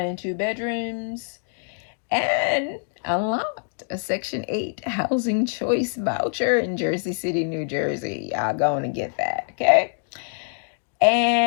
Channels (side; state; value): right; silent; digital silence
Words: and 2 bedrooms. And unlocked a Section 8 Housing Choice Voucher in Jersey City, New Jersey. Y'all going to get that, okay?